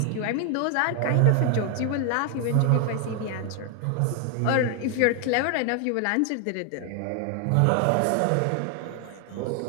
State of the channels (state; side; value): different; both; correlation 0.01